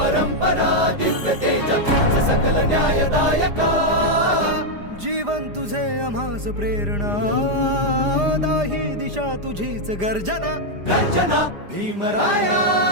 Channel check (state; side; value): late; left; 5.0 ms